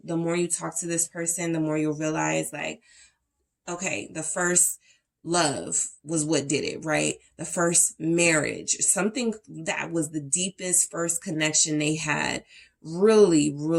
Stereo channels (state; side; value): identical; both; correlation 1.00